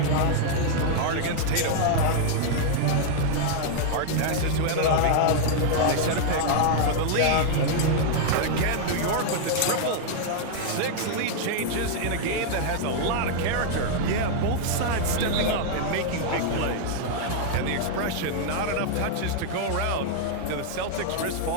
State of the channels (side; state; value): both; different; correlation -0.01